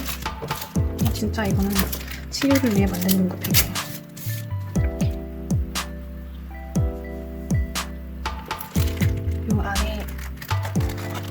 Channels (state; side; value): identical; both; correlation 1.00